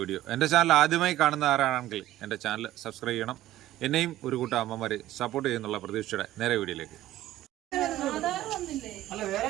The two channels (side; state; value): left; quieter; 14.6 dB